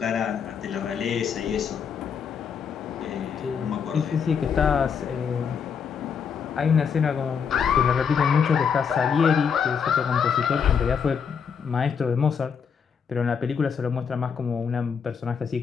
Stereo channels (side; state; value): right; quieter; 6.7 dB